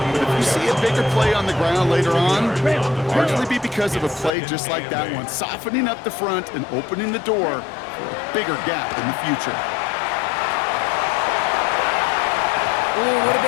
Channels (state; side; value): drops out; right; at 4.3 s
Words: but if you see a bigger play on the ground later on, it'll largely be because of a play just like that one, softening up the front and opening the door for a bigger gap in the future. Ooh, would have